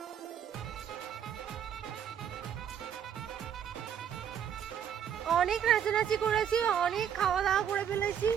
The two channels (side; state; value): left; quieter; 8.8 dB